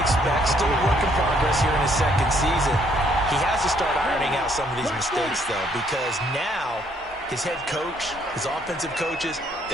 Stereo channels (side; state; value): both; normal; correlation 0.67